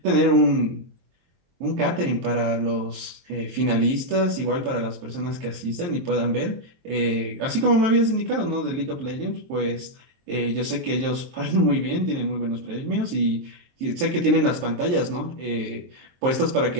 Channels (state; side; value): late; left; 23 ms